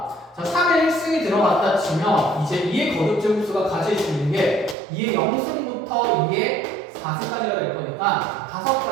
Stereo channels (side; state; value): left; drops out; at 4.8 s